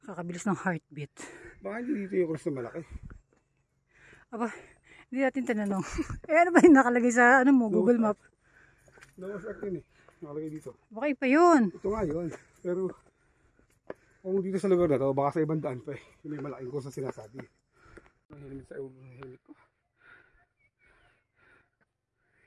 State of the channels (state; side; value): identical; both; correlation 1.00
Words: Kakabilis ng heartbeat. Baka hindi dito yung cross na malaki. Aba, hindi natin tinanong. Ano ba yung nakalagay sa Google Map? Nawas akin eh. Nakalagay dito. Baka iba yun. Ito nga yun. Pero kung dito sa lugar na to, baka sa ibang daan pa eh. Yung may malaking course na sinasabi. Ang helmet sa helmet ko.